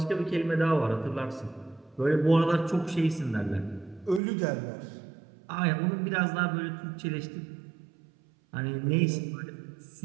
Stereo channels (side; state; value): left; drops out; at 4.2 s